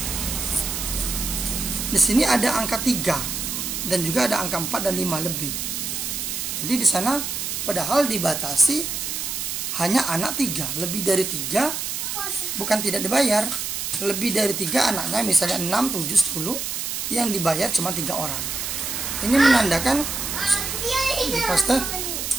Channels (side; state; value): right; noise; hiss, 3 dB below the sound